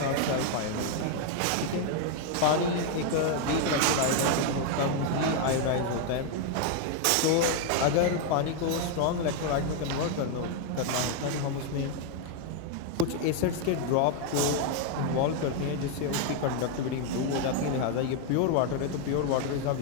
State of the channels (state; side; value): different; both; correlation 0.01